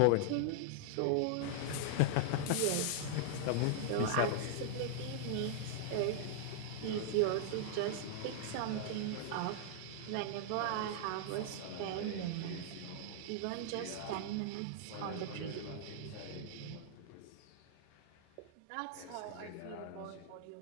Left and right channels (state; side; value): different; both; correlation -0.01